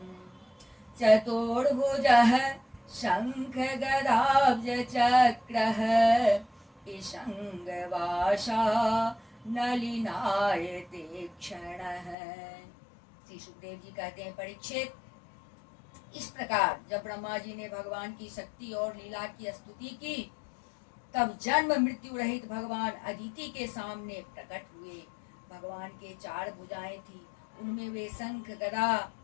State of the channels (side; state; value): right; drops out; at 12.2 s